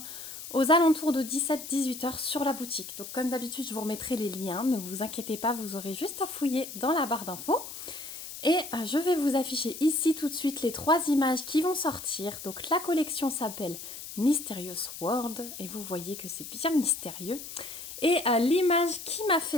aux alentours de 17-18 heures sur la boutique. Donc comme d'habitude je vous remettrai les liens, ne vous inquiétez pas, vous aurez juste à fouiller dans la barre d'infos. Et je vais vous afficher ici tout de suite les 3 images qui vont sortir. Donc la collection s'appelle Mysterious World et vous voyez que c'est bien mystérieux. Et l'image qui m'a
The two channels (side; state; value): left; noise; hiss, 11 dB below the sound